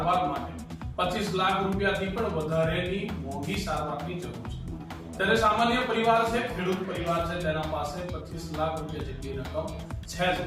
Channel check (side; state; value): both; identical; correlation 1.00